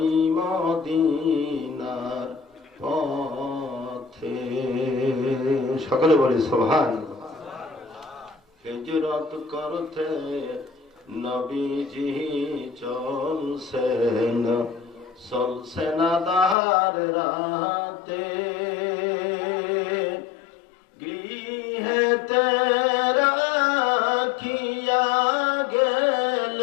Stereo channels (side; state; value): right; drops out; at 16.6 s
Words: মদিনার পথে। সকলে বলি সুবহানাল্লাহ। হিজরত করতে নবীজি চলছেন, চলছেন আঁধার রাতে, গৃহেতে রাখিয়া